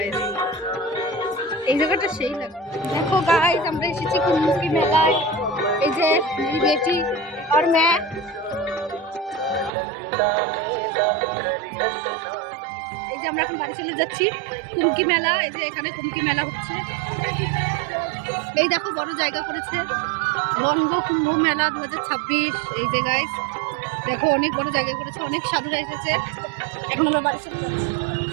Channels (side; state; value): left; drops out; at 9.7 s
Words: এই জায়গাটা সেই লাগে। দেখো গাইস আমরা এসেছি কুমকি মেলায়। এই যে বেটি আর मैं এই যে আমরা এখন বাড়ি চলে যাচ্ছি। কুমকি মেলা, এই যে এখানে কুমকি মেলা হচ্ছে। এই দেখো বড় জায়গা করেছে বঙ্গ কুম্ভ মেলা 2026। এই যে গাইস দেখো অনেক বড় জায়গা করেছে, অনেক সাধুরা এসেছে। এখন আমরা বাড়ি চলে যাচ্ছি।